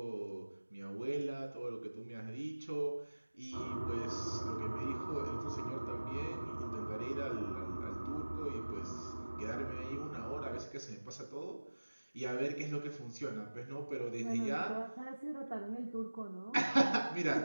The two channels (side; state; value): both; inverted; correlation -1.00